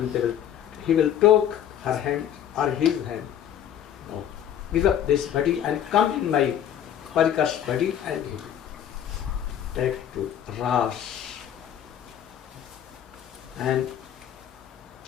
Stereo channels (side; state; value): right; quieter; 10.0 dB